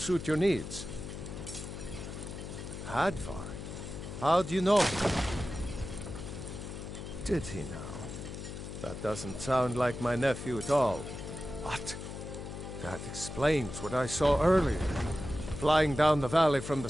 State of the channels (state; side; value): noise; left; hum, 9 dB below the sound